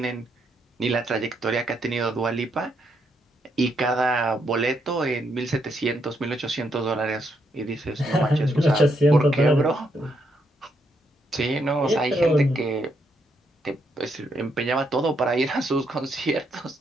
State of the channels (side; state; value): both; normal; correlation 0.77